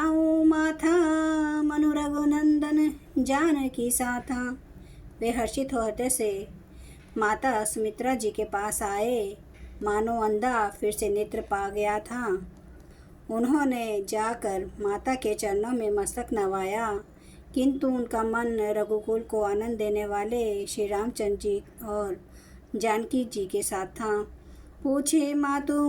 माथा, मनु रघुनंदन जानकी साथा। वे हर्षित हो हृदय से माता सुमित्रा जी के पास आए, मानो अंधा फिर से नेत्र पा गया था। उन्होंने जाकर माता के चरणों में मस्तक नवाया, किंतु उनका मन रघुकुल को आनंद देने वाले श्री रामचंद्र जी और जानकी जी के साथ था। पूछे मातु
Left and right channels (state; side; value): identical; both; correlation 1.00